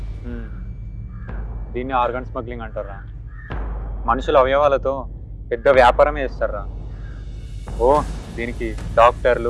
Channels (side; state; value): both; identical; correlation 1.00